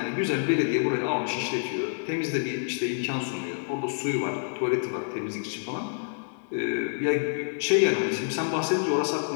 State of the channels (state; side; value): silent; right; digital silence